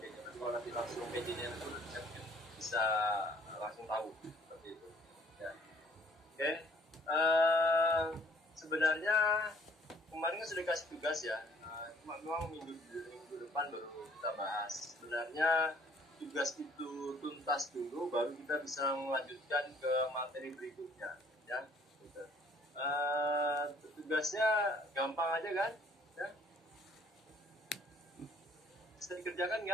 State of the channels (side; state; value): both; normal; correlation 0.60